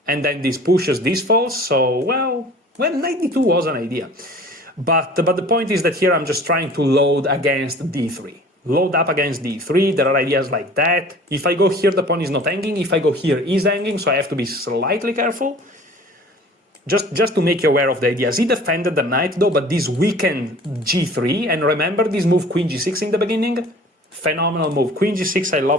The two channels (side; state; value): both; normal; correlation 0.46